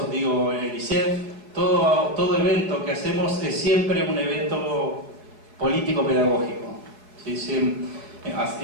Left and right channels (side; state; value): left; late; 4.6 ms